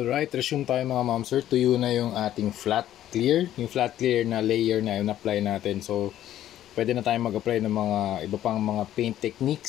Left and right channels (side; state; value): right; quieter; 12.3 dB